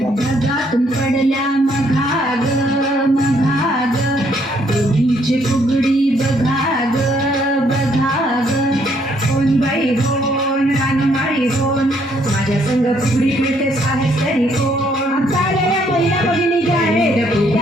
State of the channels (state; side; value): normal; both; correlation 0.69